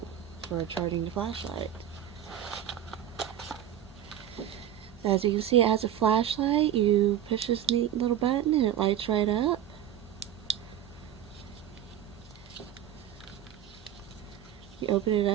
for charging the flashlight. As you can see, it has a flashlight. You push this neat little button and it lights right up. You open it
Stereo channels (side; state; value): left; quieter; 10.7 dB